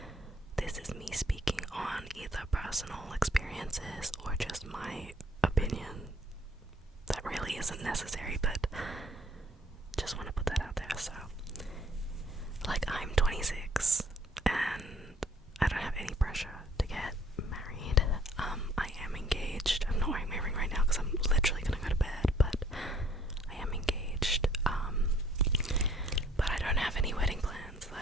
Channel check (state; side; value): normal; both; correlation 0.60